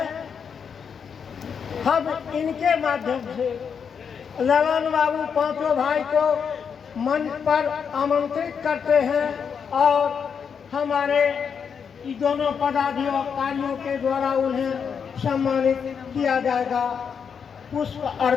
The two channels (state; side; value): quieter; right; 6.7 dB